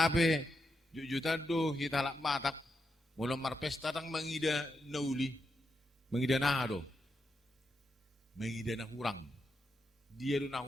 jujutan do hitalak matak, mula marpesta tang mangida nauli, mangida na do, mangida na hurang. Dia do na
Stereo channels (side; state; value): both; normal; correlation 0.84